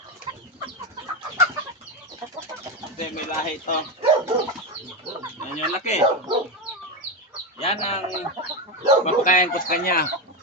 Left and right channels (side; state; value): both; normal; correlation 0.12